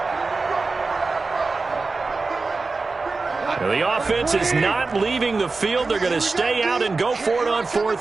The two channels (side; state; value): left; quieter; 3.9 dB